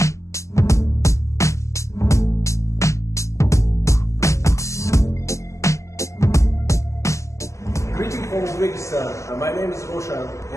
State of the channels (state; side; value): late; right; 0.15 ms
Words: from Uzbekistan. My name is Roshan,